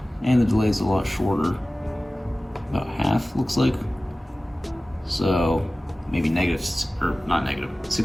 And the delay is a lot shorter, about half looks like. So maybe negative, or not negative,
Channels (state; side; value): normal; both; correlation 0.97